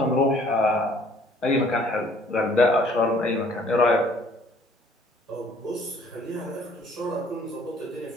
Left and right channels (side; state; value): both; normal; correlation 0.57